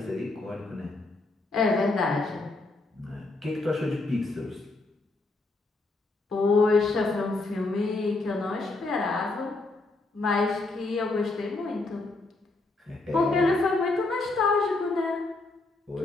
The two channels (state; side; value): quieter; right; 3.2 dB